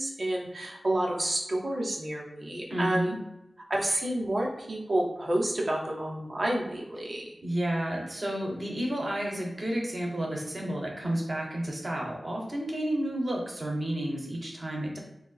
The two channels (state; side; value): normal; both; correlation 0.96